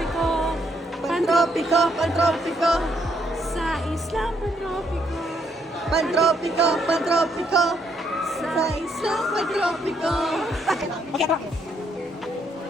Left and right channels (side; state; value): both; normal; correlation 0.73